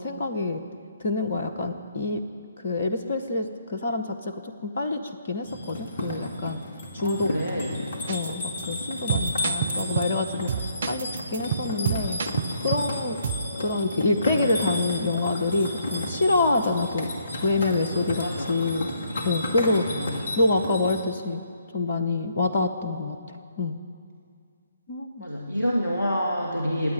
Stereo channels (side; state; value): both; inverted; correlation -0.69